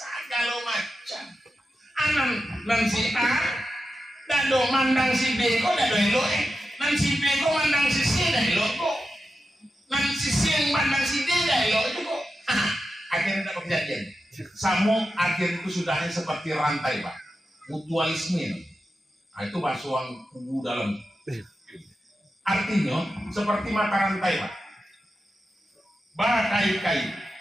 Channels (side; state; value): both; normal; correlation 0.90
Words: macam. Anan nan si A, dado mandang si B kok dado elok nan si B kok mandang si C dah elok kok. Nan si C yang mandang si D dah elok itu kok. Akhirnya dapat kejadian. Samo akhir itu sudahnya seperti rantai Pak, mutualisme. Nah, itu basuang kubu dalam. Artinya seperti mata rantai Pak. Bakait-kait.